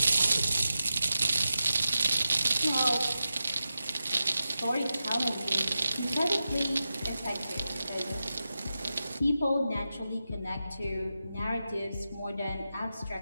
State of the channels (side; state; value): both; inverted; correlation -0.91